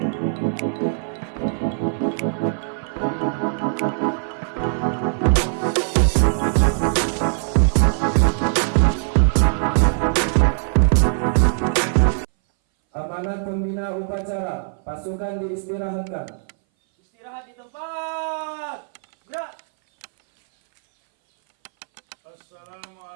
pembina upacara, pasukan diistirahatkan. Istirahat di tempat. Gerak.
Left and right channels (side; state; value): left; silent; 61 dB below the other